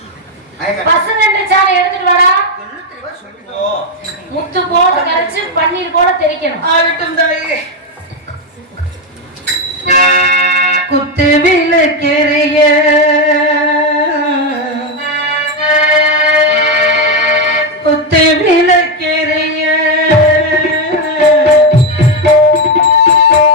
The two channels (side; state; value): both; normal; correlation 0.08